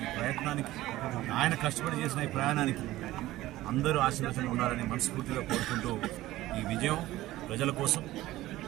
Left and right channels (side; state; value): left; quieter; 16.5 dB